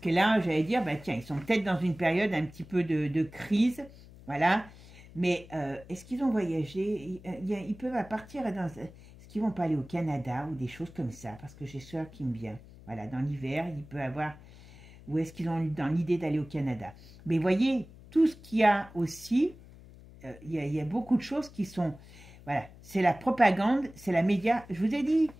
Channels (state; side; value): noise; left; hum, 20 dB below the sound